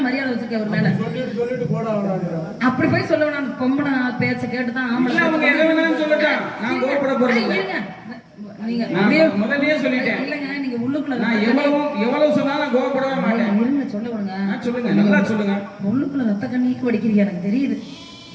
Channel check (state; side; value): identical; both; correlation 1.00